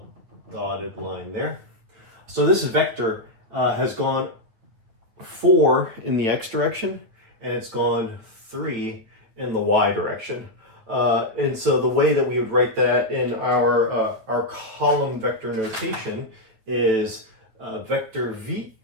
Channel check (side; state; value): left; late; 9.4 ms